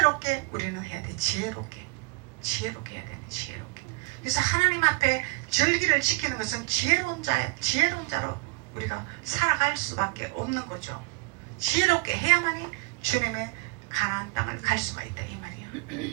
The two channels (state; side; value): quieter; left; 26.0 dB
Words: 우리는 해야 돼. 지혜롭게 해야 돼. 지혜롭게. 그래서 하나님 앞에 절기를 지키는 것은 지혜로운 자로 우리가 살아갈 수밖에 없는 거죠. 지혜롭게 해야만이 주님의 가나안 땅을 갈 수가 있다 이